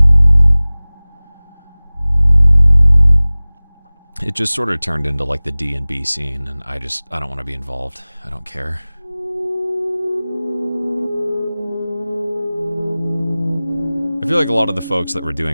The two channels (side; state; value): both; inverted; correlation -0.99